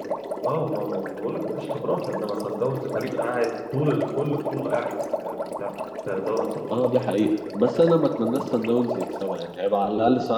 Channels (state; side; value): identical; both; correlation 1.00